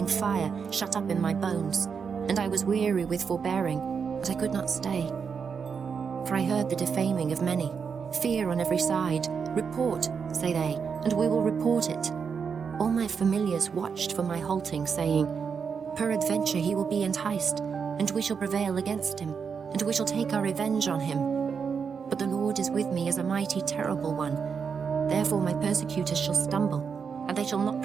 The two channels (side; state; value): left; quieter; 6.2 dB